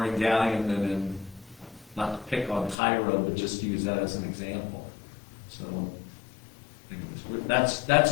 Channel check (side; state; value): right; drops out; at 2.8 s